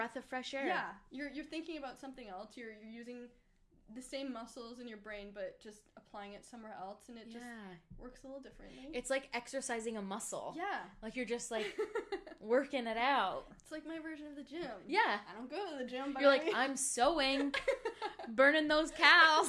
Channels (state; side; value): identical; both; correlation 1.00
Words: of fresh air. Yeah, you're thinking about something else. You're using the same muscles in your brain, but just applying it somewhere else, and it just works a little differently. It's like exercising a muscle. Yeah. Like you're just like working it out. It's like my version of the gym. Yeah. I don't go to the gym, but you're like, I'm sewing, burning those